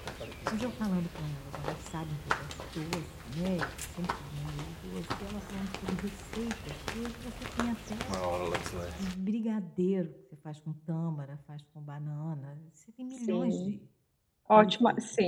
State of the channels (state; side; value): identical; both; correlation 1.00